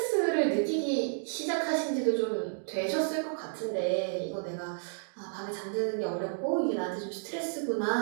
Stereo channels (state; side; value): silent; left; digital silence